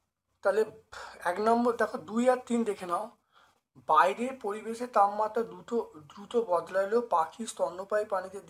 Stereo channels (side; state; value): both; identical; correlation 1.00